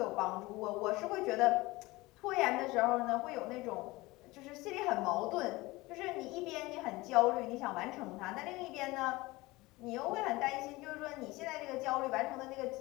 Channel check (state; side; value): quieter; right; 21.1 dB